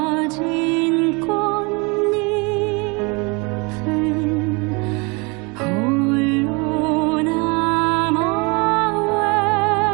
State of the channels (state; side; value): quieter; left; 29.4 dB